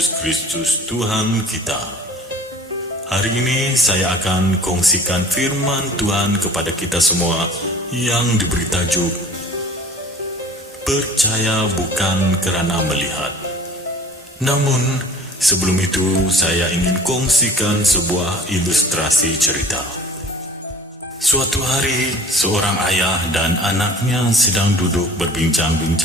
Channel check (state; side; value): normal; both; correlation 0.46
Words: Kristus Tuhan kita. Hari ini saya akan kongsikan firman Tuhan kepada kita semua yang diberi tajuk Percaya bukan kerana melihat. Namun, sebelum itu saya ingin kongsikan sebuah ilustrasi cerita. Suatu hari, seorang ayah dan anaknya sedang duduk